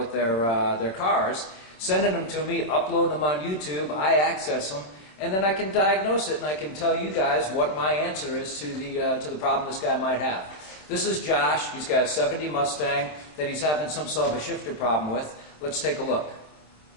their cars, sending them to me, uploading them on YouTube. I access them, and then I can diagnose it, and I can tell you guys what my answer is to the problem this guy might have. This is Josh. He's got a '70 Mustang that he's having some sort of a shifter problem with. Let's take a look.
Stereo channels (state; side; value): late; right; 26 ms